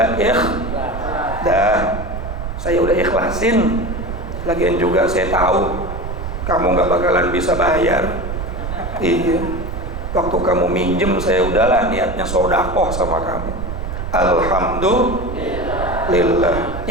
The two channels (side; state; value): right; noise; rumble, 6 dB below the sound